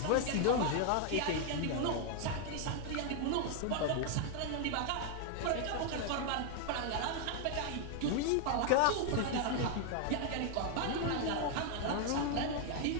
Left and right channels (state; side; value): different; both; correlation 0.00